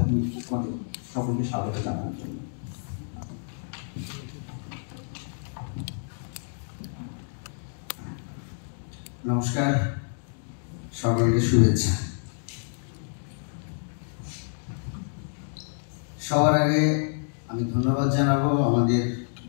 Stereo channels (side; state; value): right; silent; digital silence